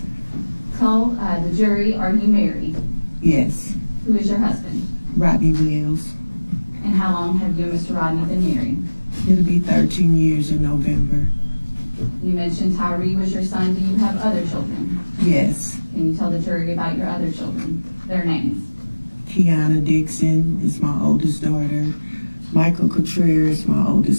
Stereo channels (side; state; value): both; inverted; correlation -1.00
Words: Tell the jury, are you married? yes. Who is your husband? Rodney Wells. And how long have you and Mr. Rodney been married? It'll be 13 years in November. You mentioned Tyre was your son. Do you have other children? Yes. Can you tell the jury about your other children, their names? Kiana Dixon is my oldest daughter. Michael Contreras is my